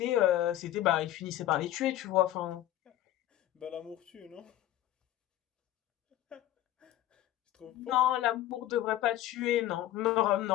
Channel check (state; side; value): quieter; right; 13.6 dB